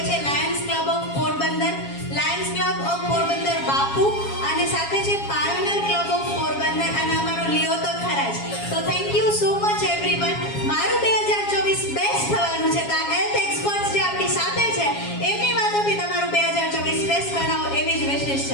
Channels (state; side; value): late; right; 7.3 ms